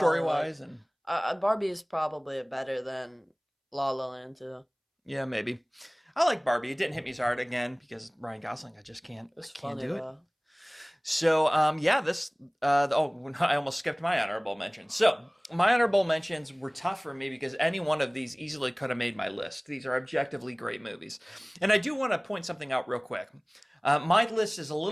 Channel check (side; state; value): both; identical; correlation 1.00